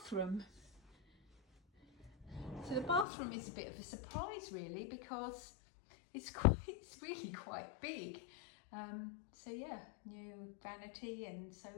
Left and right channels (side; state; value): right; drops out; at 3.1 s